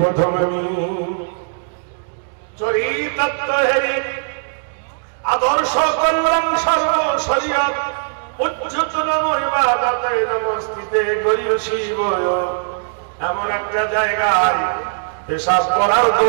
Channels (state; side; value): silent; left; digital silence